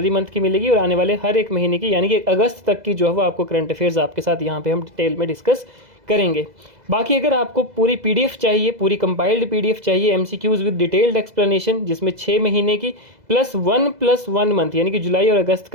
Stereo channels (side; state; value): left; late; 2.0 ms